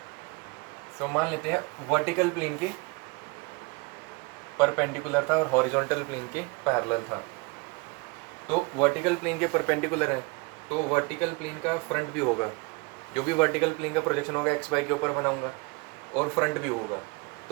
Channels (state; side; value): quieter; left; 27.8 dB